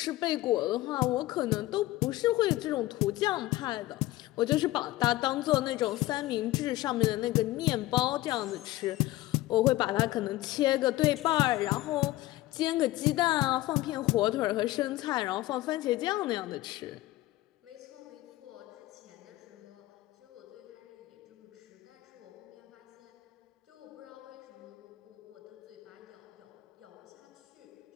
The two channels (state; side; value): quieter; right; 17.4 dB